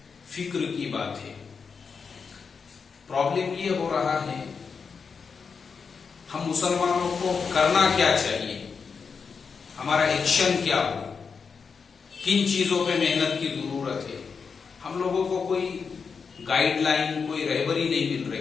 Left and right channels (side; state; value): right; quieter; 5.6 dB